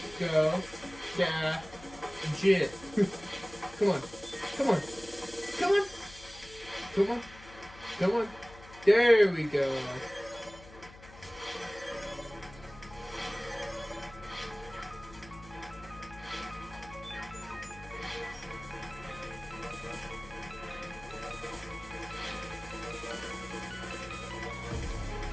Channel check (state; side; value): noise; left; hum, 19 dB below the sound